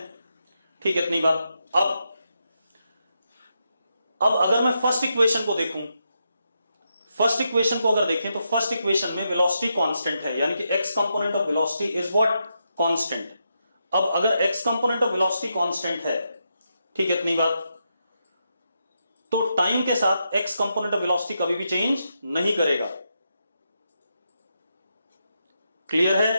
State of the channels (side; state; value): both; inverted; correlation -0.83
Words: ठीक है, इतनी बात। अब अगर मैं फर्स्ट इक्वेशन को देखूं, फर्स्ट इक्वेशन को अगर देखें तो फर्स्ट इक्वेशन में वेलोसिटी कांस्टेंट है, यानी कि x component of velocity is what, constant. अब अगर x component of velocity constant है, ठीक है, इतनी बात, तो टाइम के साथ एक्स कंपोनेंट ऑफ वेलोसिटी कभी भी चेंज नहीं करेगा। क्लियर